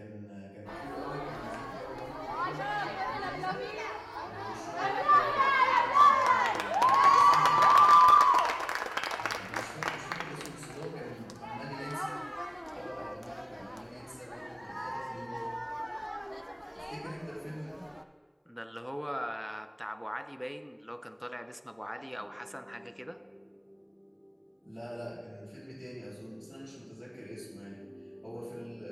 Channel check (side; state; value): both; identical; correlation 1.00